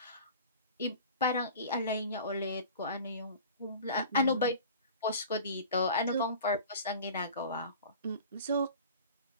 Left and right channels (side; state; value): both; inverted; correlation -0.40